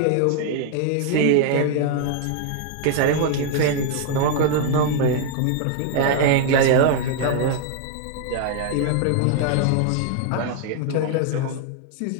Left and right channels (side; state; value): both; different; correlation 0.00